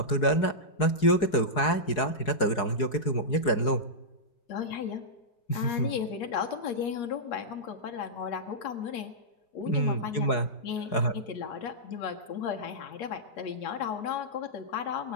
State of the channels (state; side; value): late; right; 4.8 ms